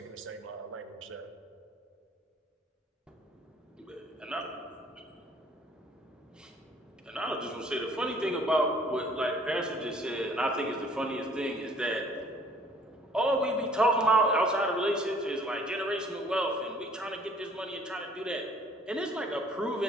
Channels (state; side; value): normal; both; correlation 0.57